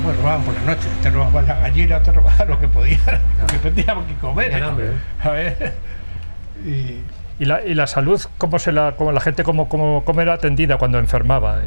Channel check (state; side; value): inverted; both; correlation -1.00